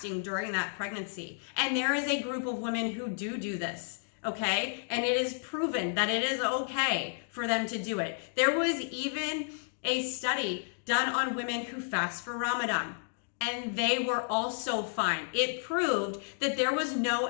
during that pregnancy. And there is a group of women who do this, okay? And it is proven that it is okay for them to do it. There was even a study done on women who fast for Ramadan, and they were also fine. It proved that there was no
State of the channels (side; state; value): right; silent; digital silence